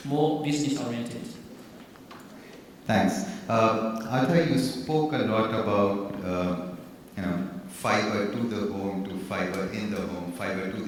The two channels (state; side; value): identical; both; correlation 1.00